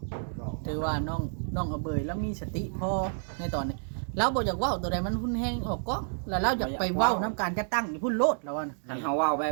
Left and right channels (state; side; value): silent; left; digital silence